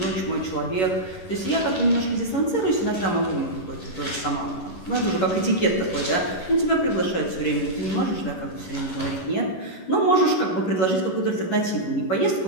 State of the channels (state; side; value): late; right; 11 ms